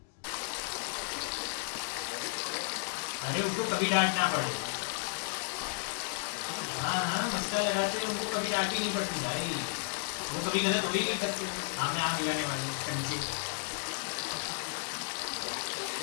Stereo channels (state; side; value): silent; right; digital silence